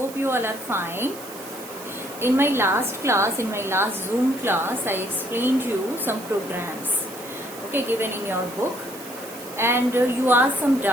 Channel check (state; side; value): noise; right; hiss, 16 dB below the sound